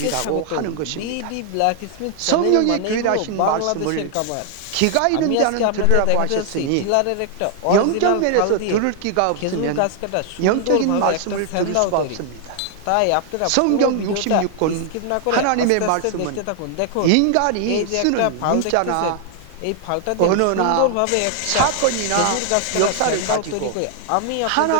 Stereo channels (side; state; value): both; different; correlation 0.00